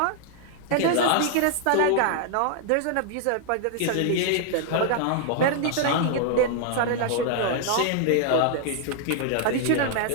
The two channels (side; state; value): both; different; correlation 0.00